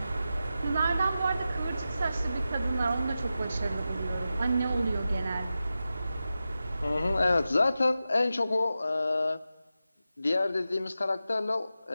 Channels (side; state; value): both; inverted; correlation -0.92